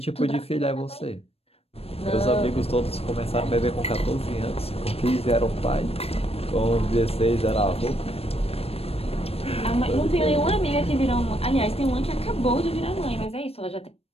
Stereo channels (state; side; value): late; right; 0.28 ms